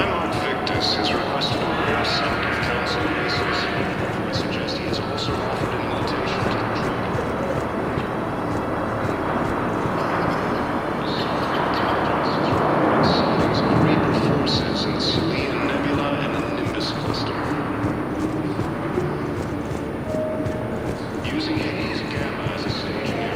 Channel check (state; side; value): identical; both; correlation 1.00